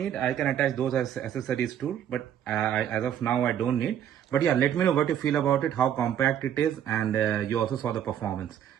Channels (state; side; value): quieter; left; 10.0 dB